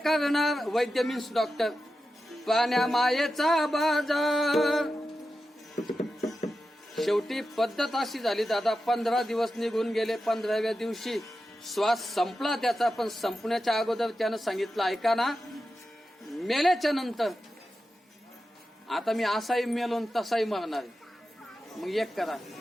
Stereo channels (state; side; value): normal; both; correlation 0.91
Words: वैद्य मीन्स डॉक्टर. पाण्या मायेचा बाजार. शेवटी पद्धत अशी झाली दादा, 15 दिवस निघून गेले. 15व्या दिवशी श्वास संपला त्याचा, पण संपण्याच्या अगोदर त्यानं सांगितलं, ऐका ना, मेल्याच्या नंतर आता मी असाही मेलो तसाही मरणार आहे. मग एक करा,